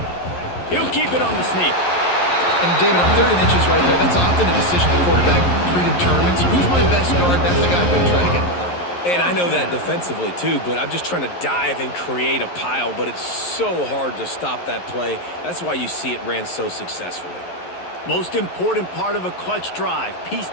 He'll keep it on the sneak. And David, on 3rd and inches right there, that's often a decision the quarterback predetermines. Who's my best guard? That's the guy I'm going to try to get behind. And I know that defensively too, but I'm just trying to dive and create a pile, but it's so hard to stop that play. That's why you see it ran so successfully. Most important part of a clutch drive, piece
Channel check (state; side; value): late; right; 11 ms